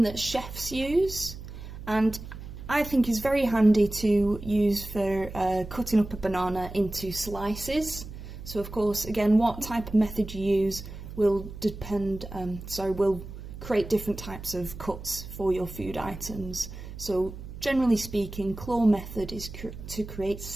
that chefs use, and I think is very handy to use for cutting up a banana into slices. So of course, again, what type of method you use will will create different types of cuts for your food items. So generally speaking, claw method is to create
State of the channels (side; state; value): right; noise; hum, 12 dB below the sound